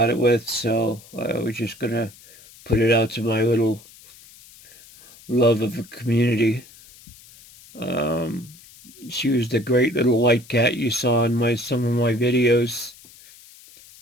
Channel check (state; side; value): noise; left; hiss, 23 dB below the sound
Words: it with, so I was just going to put it out to my little love of a community. She was the great little white cat you saw in some of my videos.